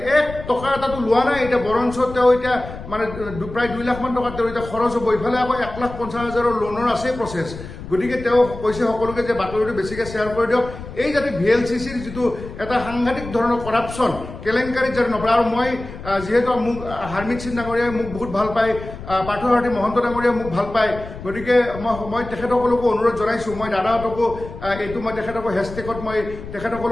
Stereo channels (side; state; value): left; noise; rumble, 12 dB below the sound